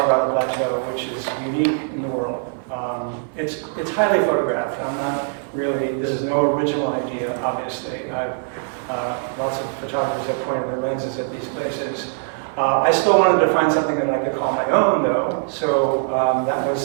Plateau, which is unique in the world. It's highly photographed. I'm not really. This is no original idea, obviously. Lots of photographers have pointed their lenses at these places. I still wanted to find something that I could call my own, though. So that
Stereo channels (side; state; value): left; silent; digital silence